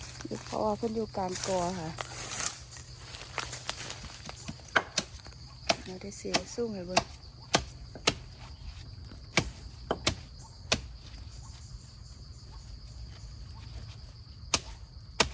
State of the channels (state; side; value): identical; both; correlation 1.00